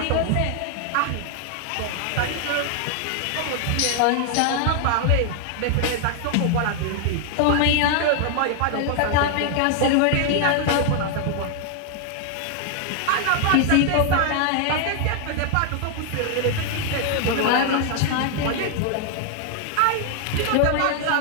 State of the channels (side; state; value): both; different; correlation 0.00